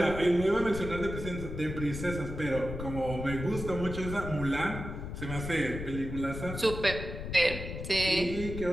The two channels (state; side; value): noise; left; rumble, 7 dB below the sound